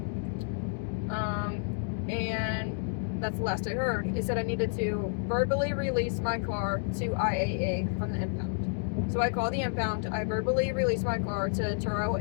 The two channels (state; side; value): silent; right; digital silence